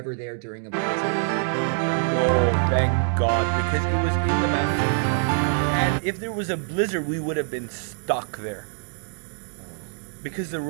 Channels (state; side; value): silent; left; digital silence